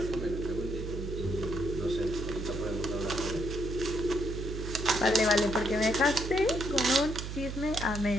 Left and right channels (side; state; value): right; noise; hum, 6 dB below the sound